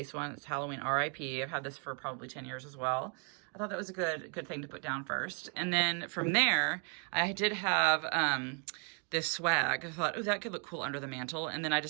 one. It's Halloween RIP. I've had this for probably 10 years as well. I thought that was a good thing to put down first. And then from there, I did have this swag. I thought, oh, that could look cool under the mantle. And then I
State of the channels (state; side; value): quieter; left; 39.6 dB